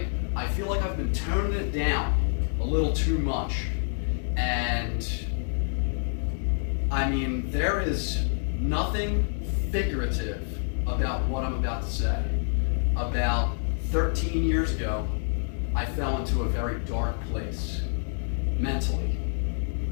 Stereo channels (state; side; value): silent; right; 60 dB below the other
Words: I feel like I've been toning it down a little too much, and there is nothing figurative about what I'm about to say. About 13 years ago, I fell into a very dark place mentally,